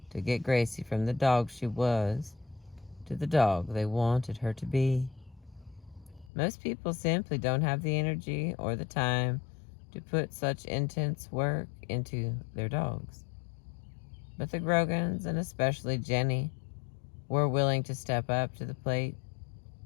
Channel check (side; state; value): right; drops out; at 6.3 s